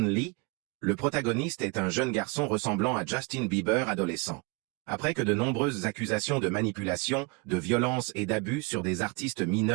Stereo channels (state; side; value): quieter; left; 28.1 dB